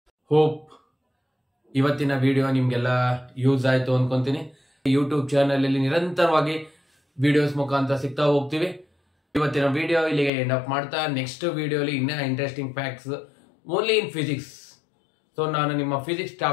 ಹೋಪ್ ಇವತ್ತಿನ ವಿಡಿಯೋ ನಿಮ್ಗೆಲ್ಲ ಯೂಸ್ ಆಯ್ತು ಅನ್ಕೊಂತೀನಿ. ಯೂಟ್ಯೂಬ್ ಚಾನಲ್ ಅಲ್ಲಿ ನಿರಂತರವಾಗಿ ವಿಡಿಯೋಸ್ ಮುಖಾಂತರ ಸಿಗ್ತಾ ಹೋಗ್ತೀವಿ. ಇವತ್ತಿನ ವಿಡಿಯೋ ಇಲ್ಲಿಗೆ ಎಂಡ್ ಅಪ್ ಮಾಡ್ತಾ ನೆಕ್ಸ್ಟ್ ವಿಡಿಯೋಲಿ ಇನ್ನೂ interesting facts only in physics. So ನಾನು ನಿಮ್ಮ ಫಿಸಿಕ್ಸ್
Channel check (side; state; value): right; drops out; at 10.3 s